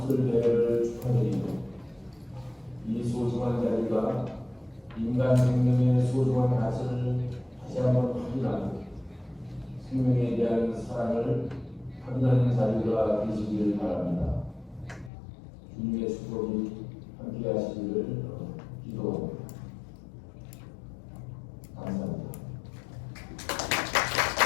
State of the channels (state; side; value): drops out; right; at 15.1 s